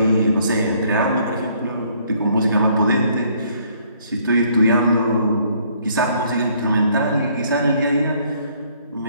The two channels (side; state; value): both; inverted; correlation -0.64